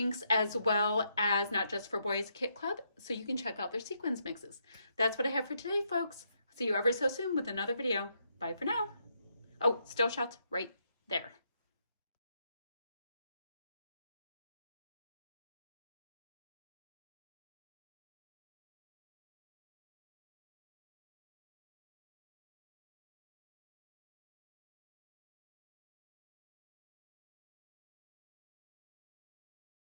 as well as Not Just for Boys Kit Club, so you can check out their sequins mixes. That's what I have for today, folks. See you ever so soon with another video. Bye for now. Oh, still shots right there.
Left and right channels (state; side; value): inverted; both; correlation -0.77